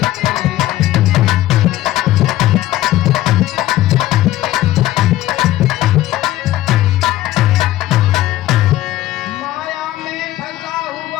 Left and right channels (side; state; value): right; quieter; 15.0 dB